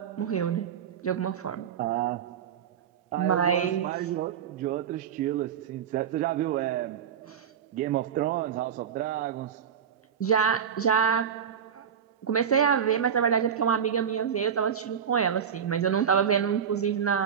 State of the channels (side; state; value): left; quieter; 8.1 dB